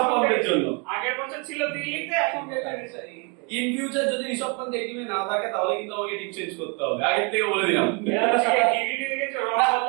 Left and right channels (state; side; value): quieter; left; 33.7 dB